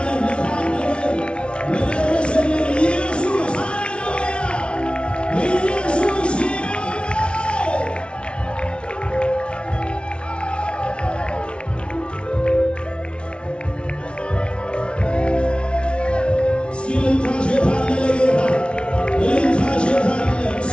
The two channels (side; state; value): right; late; 0.059 ms